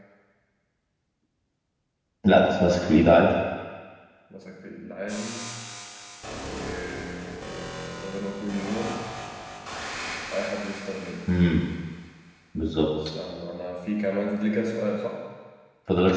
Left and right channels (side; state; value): both; identical; correlation 1.00